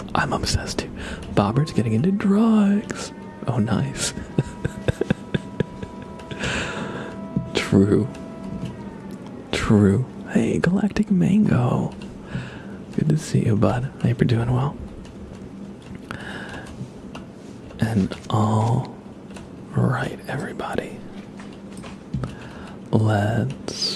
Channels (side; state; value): both; identical; correlation 1.00